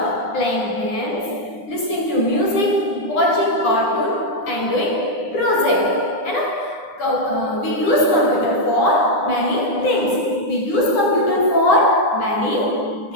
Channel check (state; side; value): late; right; 9.8 ms